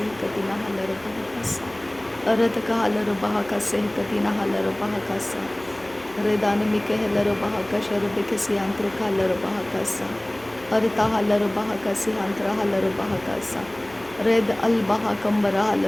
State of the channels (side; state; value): left; noise; hum, 24 dB below the sound